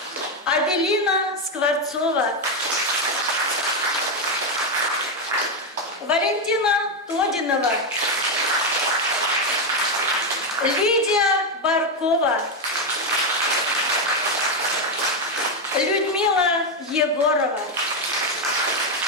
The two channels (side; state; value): both; normal; correlation 0.06